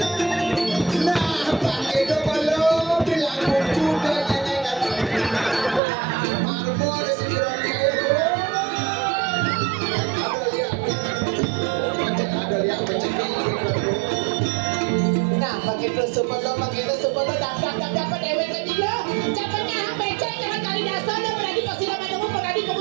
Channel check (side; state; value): left; drops out; at 5.8 s